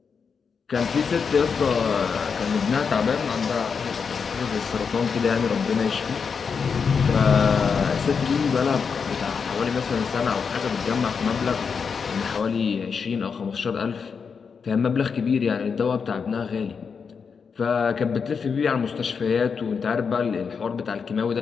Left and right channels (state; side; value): quieter; right; 5.9 dB